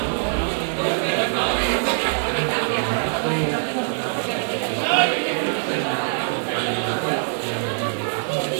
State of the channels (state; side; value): silent; left; 64 dB below the other